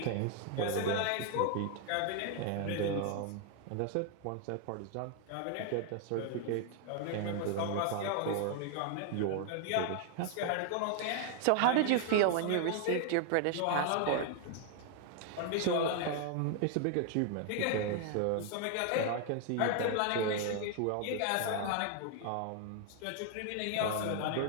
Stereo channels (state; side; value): different; both; correlation 0.00